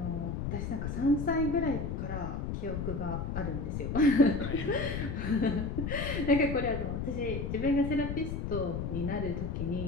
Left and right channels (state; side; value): noise; left; rumble, 3 dB below the sound